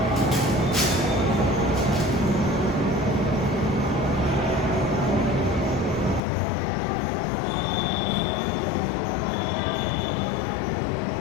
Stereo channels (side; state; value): right; drops out; at 6.2 s